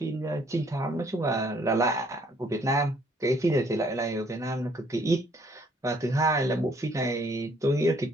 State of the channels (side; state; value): both; normal; correlation 0.64